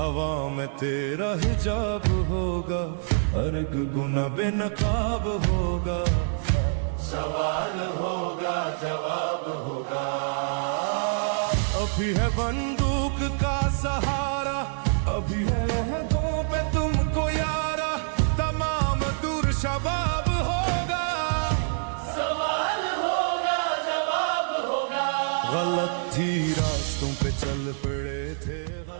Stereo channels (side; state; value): left; silent; digital silence